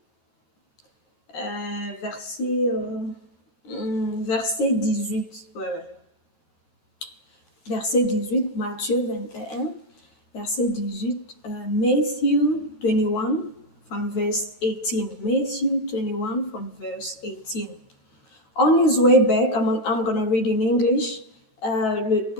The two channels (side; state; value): right; late; 9.2 ms